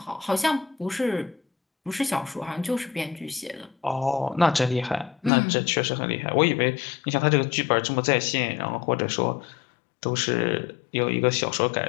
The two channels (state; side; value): drops out; right; at 5.3 s